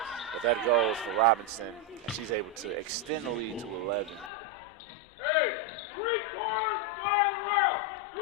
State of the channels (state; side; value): drops out; right; at 4.3 s